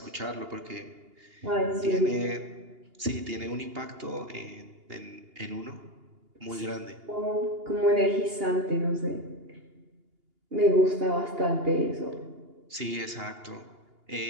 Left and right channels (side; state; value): left; late; 2.8 ms